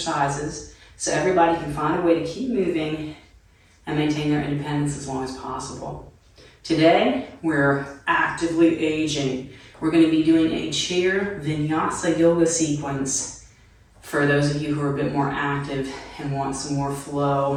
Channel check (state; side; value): identical; both; correlation 1.00